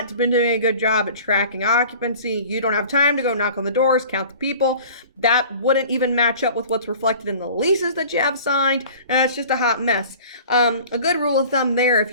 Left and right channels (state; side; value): inverted; both; correlation -0.44